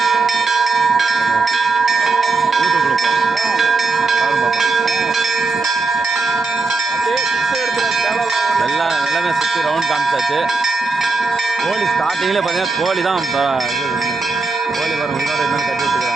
யூடியூப்பில் பார்ப்போம். எல்லாமே சுற்றி ரவுண்ட் காமிச்சாச்சு. கோழி ஸ்டார்டிங்கில் பார்த்தீங்கன்னா கோழி தான் கோழி வரும் இன்னொரு என்னன்னு கட்டி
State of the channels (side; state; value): left; quieter; 3.9 dB